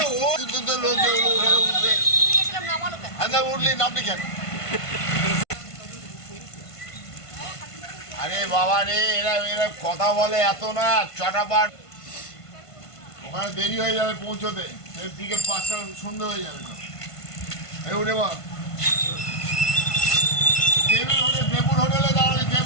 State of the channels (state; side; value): late; right; 1.5 ms